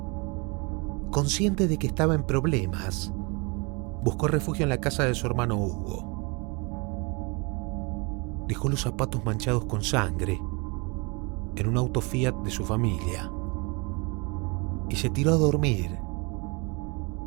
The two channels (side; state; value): left; quieter; 29.6 dB